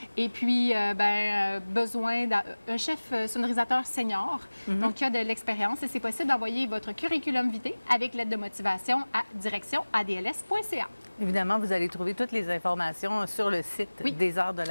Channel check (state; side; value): inverted; both; correlation -1.00